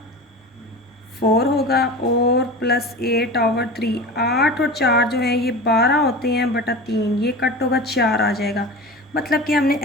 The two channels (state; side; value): normal; both; correlation 0.32